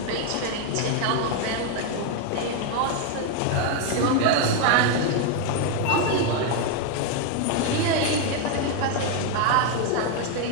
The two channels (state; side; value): different; both; correlation 0.01